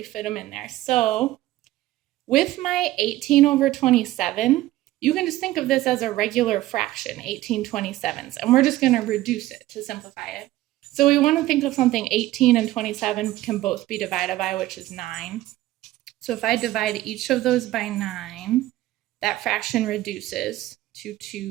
fit them in there. So with my 18 over 27, you can just think of this as a regular fraction, 18/27s, and we're just going to reduce it to simplify it. So we want to think of something 18 and 27 can both be divided by, which is 9. So if I divide each of those by 9, that fraction reduces to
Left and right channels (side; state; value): left; quieter; 16.0 dB